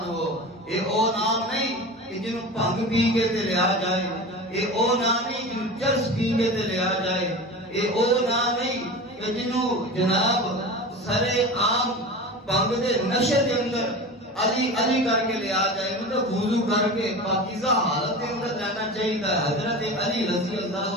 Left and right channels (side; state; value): both; normal; correlation 0.31